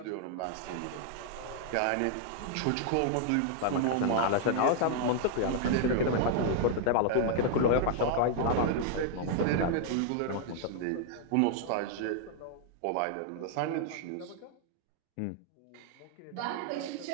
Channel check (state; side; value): different; both; correlation -0.01